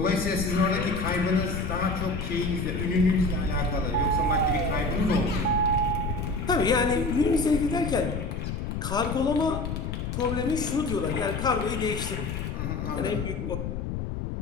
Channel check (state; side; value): noise; left; rumble, 4 dB below the sound